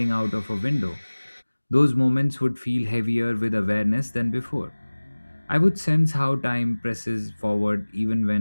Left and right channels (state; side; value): inverted; both; correlation -1.00